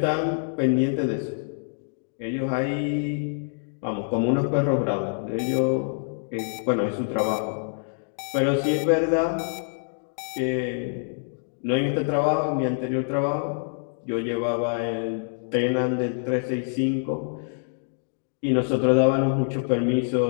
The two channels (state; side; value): silent; right; digital silence